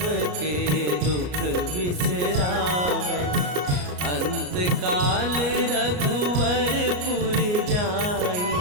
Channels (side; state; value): left; late; 33 ms